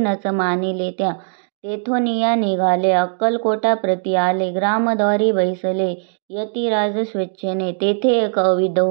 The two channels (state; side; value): silent; left; digital silence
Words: मानिले त्या, तेथोनिया निघाले अक्कलकोटा प्रति आले, ग्रामद्वारी बैसले यतिराज स्वेच्छेने, तेथे एक अविध